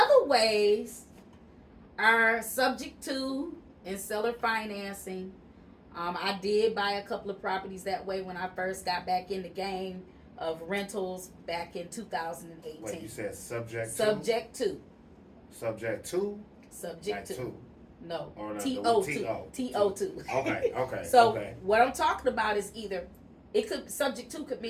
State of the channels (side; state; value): both; identical; correlation 1.00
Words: ways are subject to and seller financing. I did buy a couple of properties that way when I first got back in the game of rentals back in 2018. Wait, you said subject to? Subject to. Subject to? Subject like to. to. No. Or TO2. TO2. Okay. So okay. what I'm talking about is either, it could, subject to could